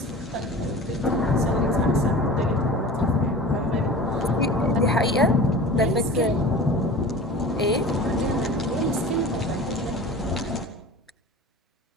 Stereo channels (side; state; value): both; normal; correlation 0.37